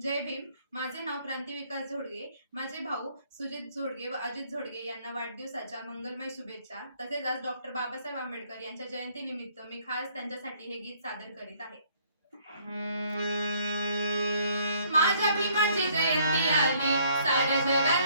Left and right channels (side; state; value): both; inverted; correlation -0.63